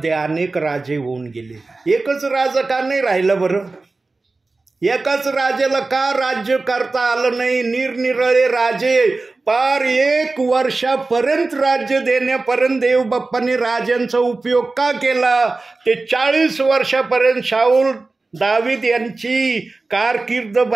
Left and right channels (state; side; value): quieter; left; 3.5 dB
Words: अनेक राजे होऊन गेले. एकच राजा का नाही राहिलं बरं? एकाच राजाला का राज्य करता आलं नाही? निरनिराळे राजे पार 1 वर्षापर्यंत राज्य देण्यापर्यंत देवबाप्पाने राजांचा उपयोग का केला? ते 40 वर्षापर्यंत शाऊल दावीद यांची कारकीर्द